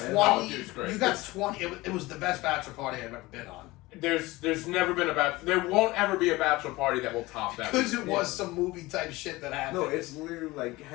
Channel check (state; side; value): quieter; right; 20.4 dB